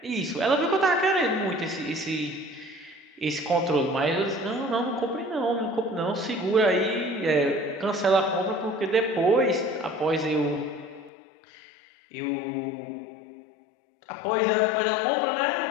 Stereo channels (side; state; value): right; drops out; at 11.1 s